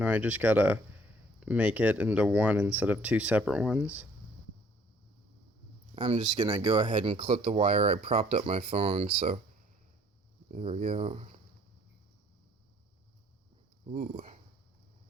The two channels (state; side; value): normal; both; correlation 0.59